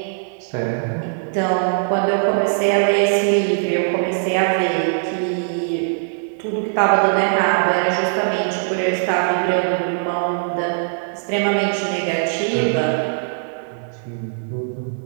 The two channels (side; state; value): left; silent; digital silence